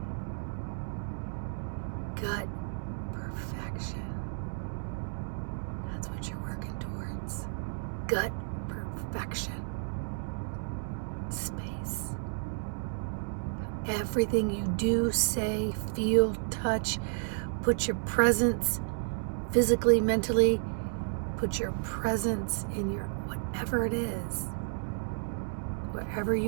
Gut perfection. That's what you're working towards. Gut perfection space. Everything you do, say, feel, touch, put your presence physically, mentally, put your presence in your whatever it is. Wherever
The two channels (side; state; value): left; silent; digital silence